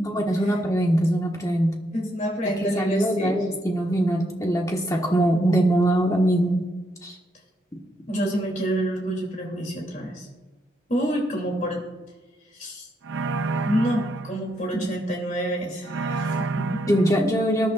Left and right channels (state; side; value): normal; both; correlation 0.77